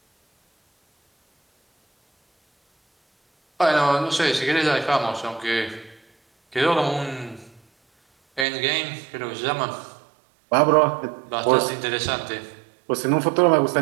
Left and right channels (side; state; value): left; drops out; at 8.5 s